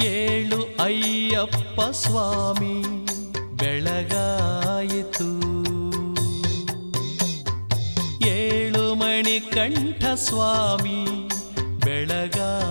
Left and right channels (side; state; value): both; inverted; correlation -1.00